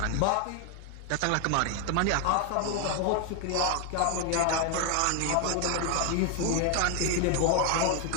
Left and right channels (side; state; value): both; different; correlation 0.01